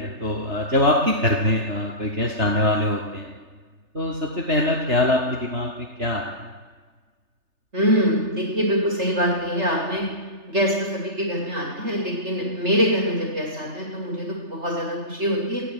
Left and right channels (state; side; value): late; left; 3.3 ms